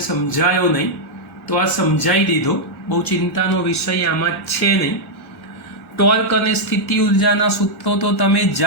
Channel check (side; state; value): both; normal; correlation -0.04